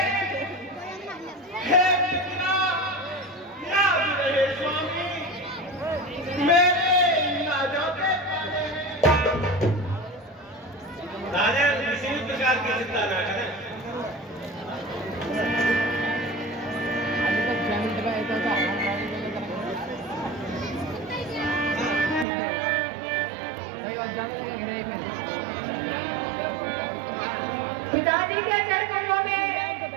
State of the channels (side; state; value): left; drops out; at 22.2 s